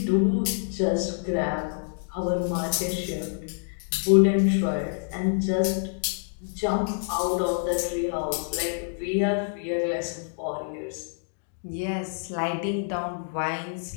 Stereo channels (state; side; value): silent; right; digital silence